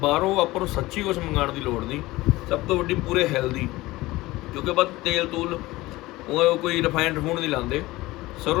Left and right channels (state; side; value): quieter; right; 19.1 dB